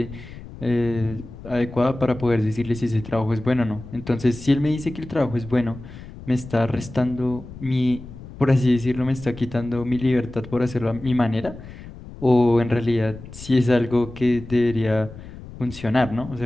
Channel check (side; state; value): left; noise; rumble, 15 dB below the sound